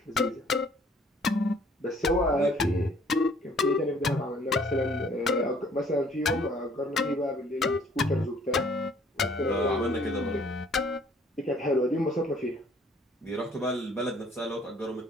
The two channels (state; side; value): normal; both; correlation 0.58